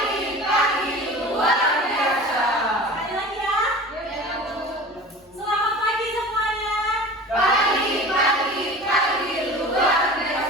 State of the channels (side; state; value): both; normal; correlation 0.38